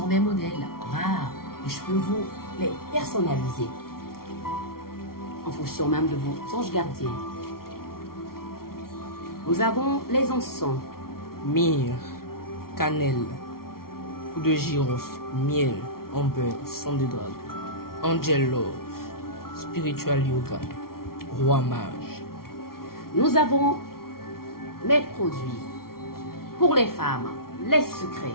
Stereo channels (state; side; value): late; right; 0.93 ms